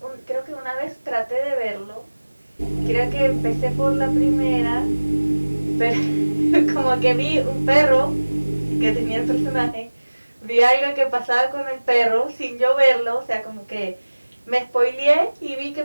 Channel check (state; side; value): inverted; both; correlation -1.00